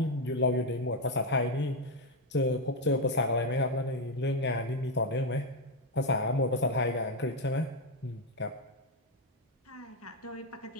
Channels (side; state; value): both; normal; correlation 0.05